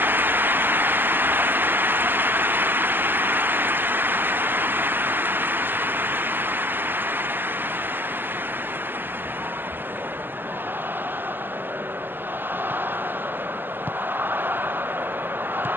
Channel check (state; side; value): late; left; 0.096 ms